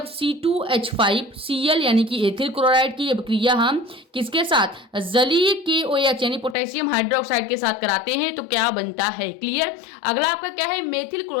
C2H5Cl यानी कि एथिल क्लोराइड की अभिक्रिया हम किसके साथ जलीय KOH यानी पोटेशियम हाइड्रोक्साइड के साथ कराते हैं तो क्या बनता है। क्लियर। अगला आपका क्या है, मेथिल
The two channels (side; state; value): right; drops out; at 6.6 s